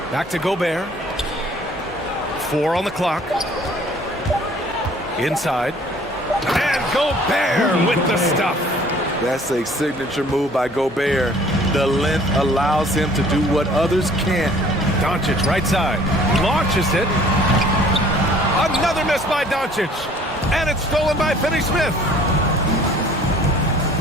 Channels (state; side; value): normal; both; correlation 0.54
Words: Back to Gobert. 4 on the clock. Inside. And Gobert with the stuff. That's a signature move by Gobert. The length allows him to do what others can't. Doncic right side. Launches it. Another miss by Doncic. And it's stolen by Finney-Smith.